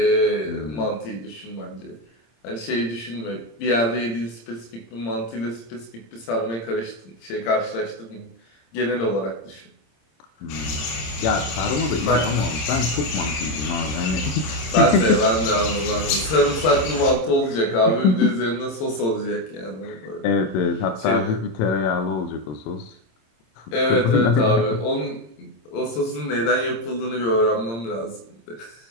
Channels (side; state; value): right; late; 26 ms